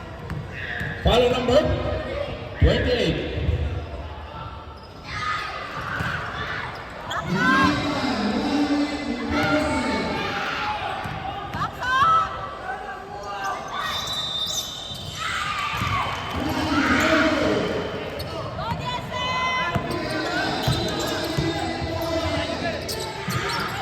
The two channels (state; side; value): identical; both; correlation 1.00